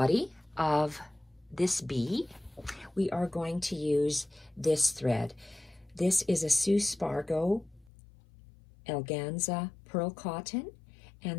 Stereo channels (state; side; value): drops out; right; at 7.9 s